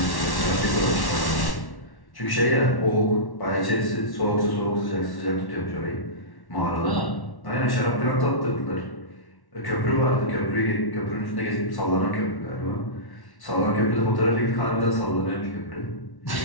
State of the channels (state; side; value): late; right; 1.1 ms